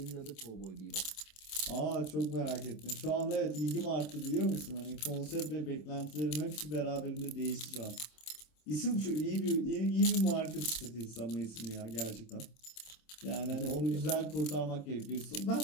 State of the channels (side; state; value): right; late; 26 ms